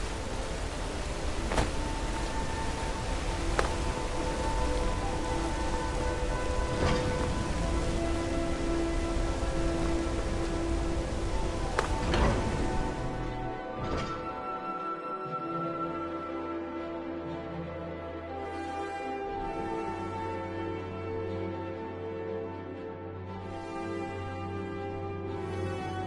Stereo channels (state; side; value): identical; both; correlation 1.00